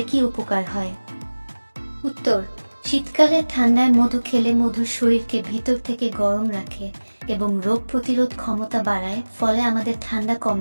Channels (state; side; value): inverted; both; correlation -1.00